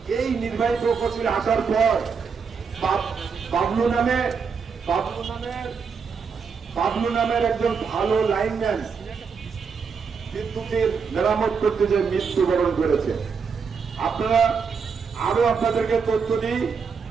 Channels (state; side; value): quieter; left; 5.8 dB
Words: এই নির্বাহী প্রকৌশলী আসার পর বাবলু নামের একজন ভালো লাইনম্যান বিদ্যুতের মেরামত করতে যে মৃত্যুবরণ করেছে। আপনারা আরো আপনাদেরকে তথ্য দিই,